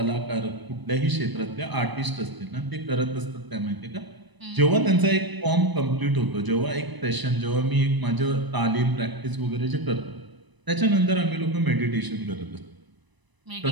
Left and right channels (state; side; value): late; left; 1.0 ms